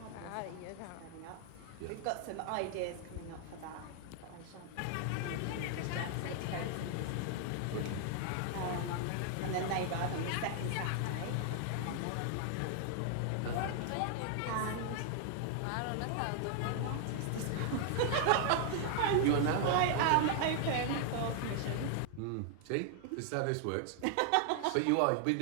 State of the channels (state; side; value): different; both; correlation 0.00